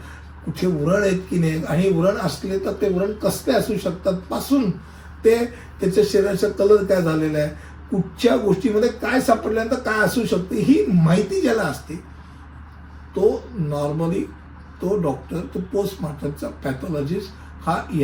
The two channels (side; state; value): both; identical; correlation 1.00